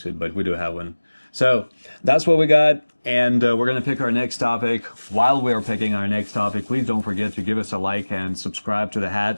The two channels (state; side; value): inverted; both; correlation -1.00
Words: it, but we do have one. So that's what we got, and we're gonna pick our next topic. While we're picking our next topic, please don't forget to give us a like and subscribe to the